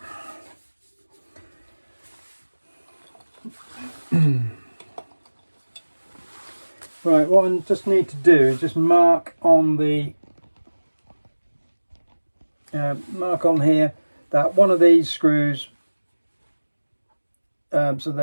Right, what I just need to do is just mark on the mark on here that one of these screws, so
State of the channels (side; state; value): both; inverted; correlation -1.00